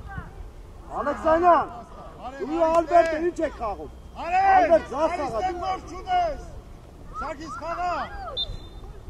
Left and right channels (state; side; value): identical; both; correlation 1.00